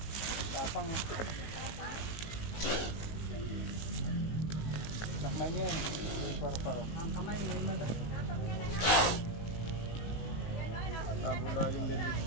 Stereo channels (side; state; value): right; late; 18 ms